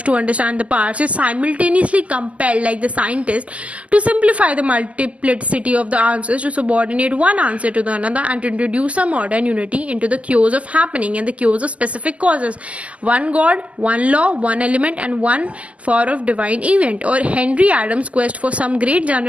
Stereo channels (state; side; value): late; left; 0.066 ms